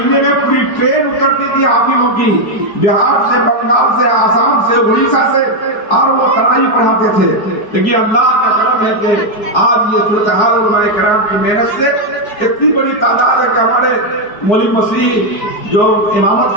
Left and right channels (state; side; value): late; right; 5.0 ms